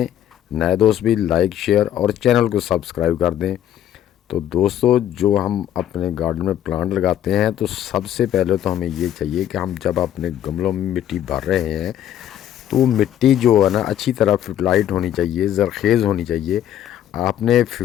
نئے دوست بھی لائک شیئر اور چینل کو سبسکرائب کر دیں۔ تو دوستو، جو ہم اپنے گارڈن میں پلانٹ لگاتے ہیں تو سب سے پہلے تو ہمیں یہ چاہیے کہ ہم جب اپنے گملوں میں مٹی بھر رہے ہیں تو مٹی جو ہے نا اچھی طرح فرٹلائٹ ہونی چاہیے، زرخیز ہونی چاہیے۔ آپ نے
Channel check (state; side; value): quieter; right; 11.1 dB